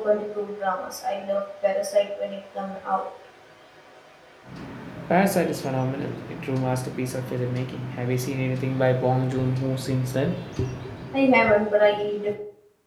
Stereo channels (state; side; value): identical; both; correlation 1.00